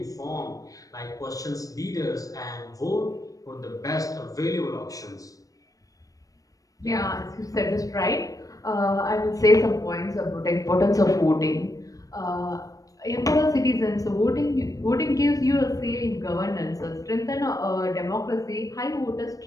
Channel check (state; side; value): late; right; 0.17 ms